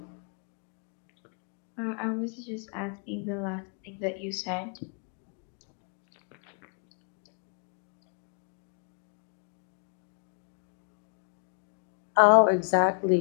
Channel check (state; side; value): quieter; right; 39.9 dB